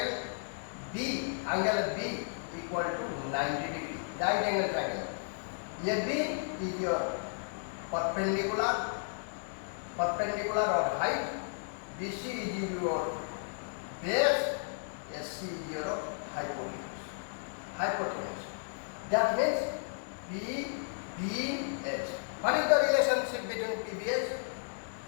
B, angle of B equal to 90 degree. Right angle triangle. AB is your perpendicular or height. BC is your base, SC is your hypotenuse. That means PBH. What is the relationship between PBH?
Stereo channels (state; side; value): silent; right; digital silence